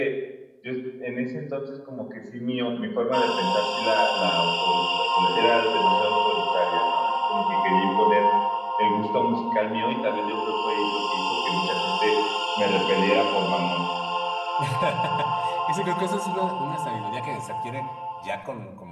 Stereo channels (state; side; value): identical; both; correlation 1.00